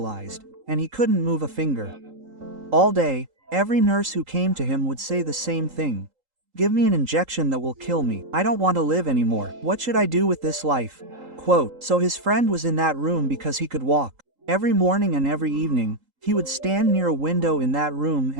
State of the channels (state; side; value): late; left; 3.8 ms